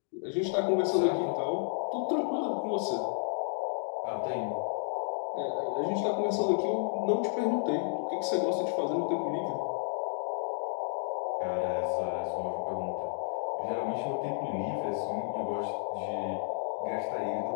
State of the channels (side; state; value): right; silent; digital silence